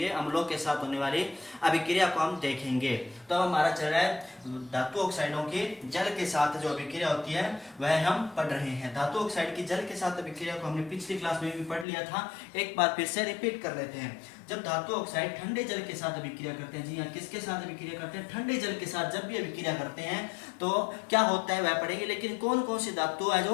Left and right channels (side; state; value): right; drops out; at 11.9 s